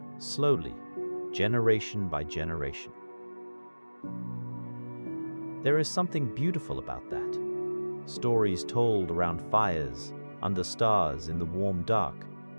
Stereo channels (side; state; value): both; inverted; correlation -1.00